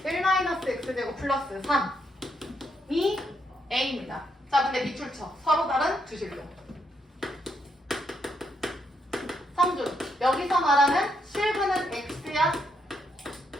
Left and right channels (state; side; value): normal; both; correlation 0.77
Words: 1-x제곱 플러스 3이 a입니다. 자, 근데 밑줄 쳐. 서로 다른 두 실로. 성준, 여기서 말하는 실근은 x야?